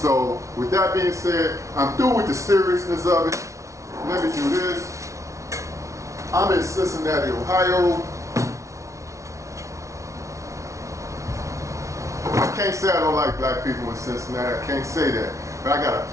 with that being said, I'm through with the seriousness of it. Let me do this. I'm in Cincinnati, Ohio. I can't say I don't like black people in Cincinnati. I can't say that. But I got a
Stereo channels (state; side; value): late; left; 0.14 ms